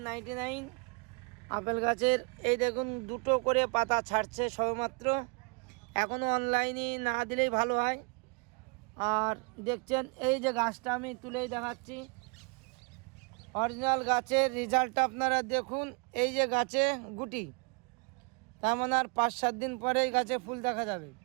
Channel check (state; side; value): quieter; left; 33.0 dB